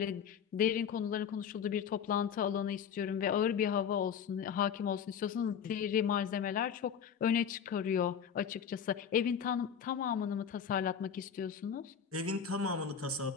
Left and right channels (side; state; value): right; quieter; 7.6 dB